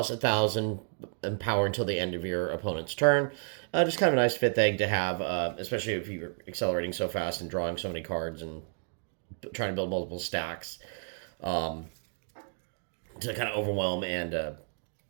1,000 in power until the end of your opponent's turn. Just kind of a nice 5th egg to have, especially if you're accelerating so fast and drawing so many cards and trying to build multiple stacks to kind of overwhelm and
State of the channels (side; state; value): left; silent; digital silence